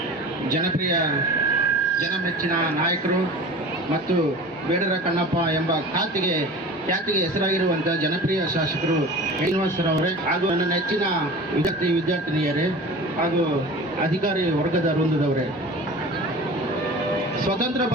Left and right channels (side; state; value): both; normal; correlation 0.38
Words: ಜನಪ್ರಿಯ ಜನಮೆಚ್ಚಿನ ನಾಯಕರು ಮತ್ತು ಬೇಡರ ಕಣ್ಣಪ್ಪ ಎಂಬ ಖ್ಯಾತಿಗೆ ಹೆಸರಾಗಿರುವಂಥ ಜನಪ್ರಿಯ ಶಾಸಕರು ಶ್ರೀನಿವಾಸರವರೇ ಹಾಗೂ ನನ್ನ ನೆಚ್ಚಿನ ವಿದ್ಯಾರ್ಥಿನಿಯರೇ ಹಾಗೂ ಅಧಿಕಾರಿ ವರ್ಗದ ವೃಂದದವರೇ, ಸ್ವತಂತ್ರ